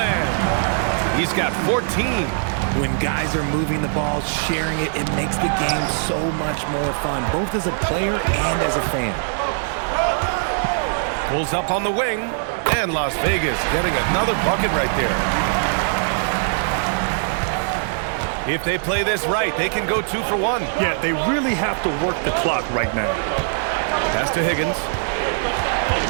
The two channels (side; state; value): left; silent; 65 dB below the other